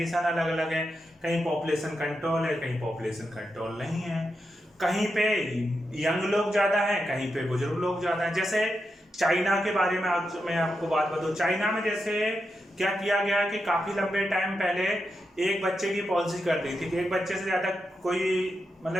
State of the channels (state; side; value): normal; both; correlation 0.87